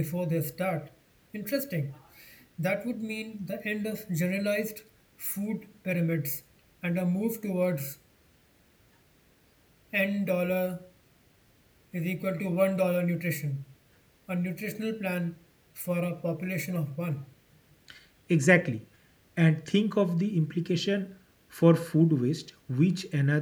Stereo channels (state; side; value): identical; both; correlation 1.00